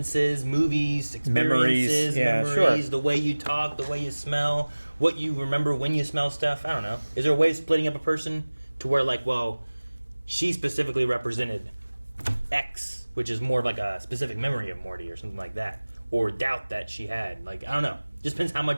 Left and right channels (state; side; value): inverted; both; correlation -1.00